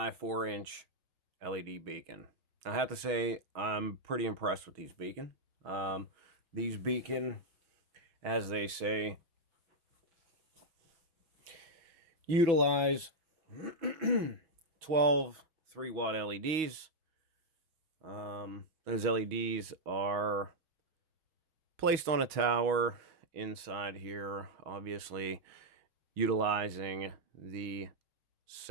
4-inch LED beacon. I have to say I'm pretty impressed with these beacon. These beacon, as they say, utilize 12 3-watt LEDs. Those LEDs are placed on a tower inside here, obviously utilizing the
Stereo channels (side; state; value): left; late; 6.3 ms